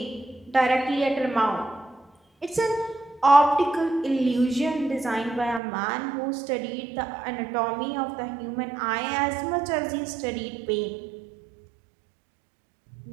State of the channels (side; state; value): left; drops out; at 5.6 s